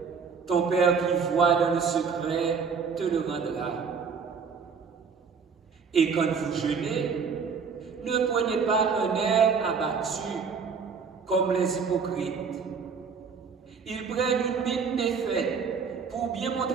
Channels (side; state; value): left; quieter; 5.8 dB